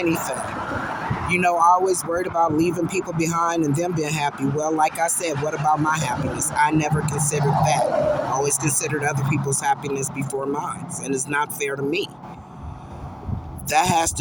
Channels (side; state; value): both; identical; correlation 1.00